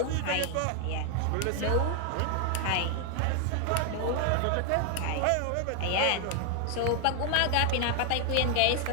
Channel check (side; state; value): both; different; correlation 0.00